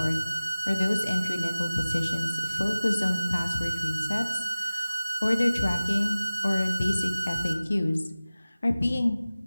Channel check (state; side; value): inverted; both; correlation -0.97